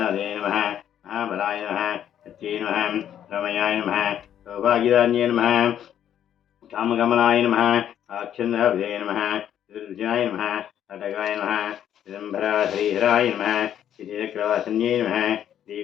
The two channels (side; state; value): right; quieter; 10.2 dB